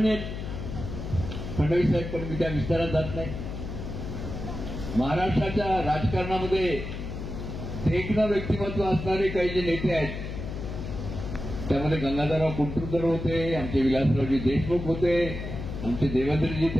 आहेत फडणवीस साहेब, पण मी त्या विस्तारात जात नाही. महाराष्ट्राच्या राजकारणामध्ये देखणं व्यक्तिमत्व असणारे काही जे नेते आहेत, त्यामध्ये गंगाधरराव कुंटुरकर होते, आमचे विलासरावजी देशमुख होते, आमचे देवेंद्रजी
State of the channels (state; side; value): noise; left; hum, 7 dB below the sound